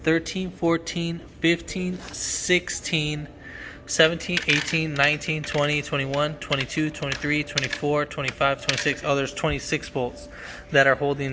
13, 14, 15, 16, 17, 18, 19, 20, 21, 22, 23, 24, 25, 26. Oh, there's 26 bolts that are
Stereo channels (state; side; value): identical; both; correlation 1.00